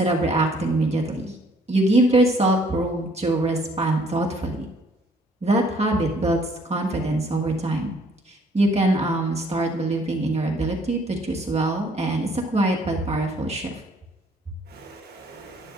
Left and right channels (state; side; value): normal; both; correlation 0.61